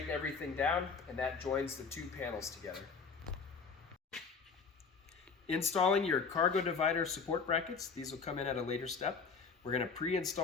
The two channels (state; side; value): quieter; right; 5.2 dB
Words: everything down and that joins the two panels together. Installing your cargo divider support brackets. These will come in at a later step. We're going to